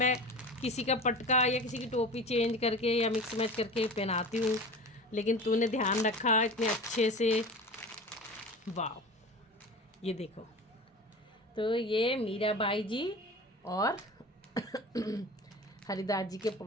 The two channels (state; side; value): normal; both; correlation 0.35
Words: किसी का पटका या किसी की टोपी चेंज करके या मिक्स मैच करके पहनाती हूँ, लेकिन तूने ध्यान रखा इतने अच्छे से। वाह ये देखो, तो ये मीरा बाई जी और हरिदास जी के